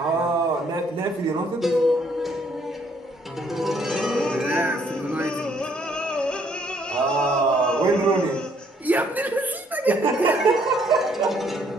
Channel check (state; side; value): normal; both; correlation 0.66